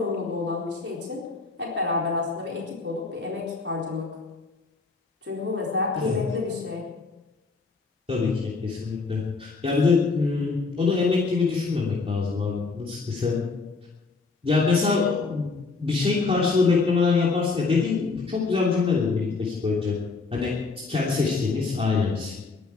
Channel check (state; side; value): quieter; right; 4.2 dB